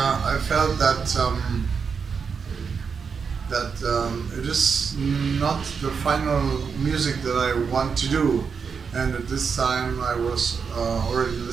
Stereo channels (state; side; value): quieter; left; 5.9 dB